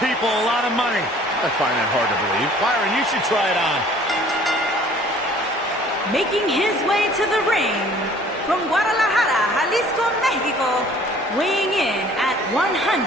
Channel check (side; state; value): both; normal; correlation 0.53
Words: a lot of money. I find that hard to believe. Byron, you should try it on. Making his way to the ring from Guadalajara, Jalisco, Mexico, weighing in at